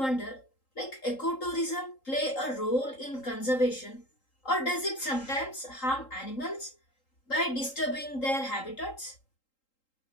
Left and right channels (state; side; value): late; right; 3.8 ms